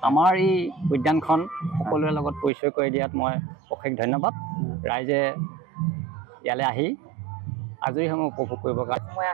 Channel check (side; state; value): left; drops out; at 2.5 s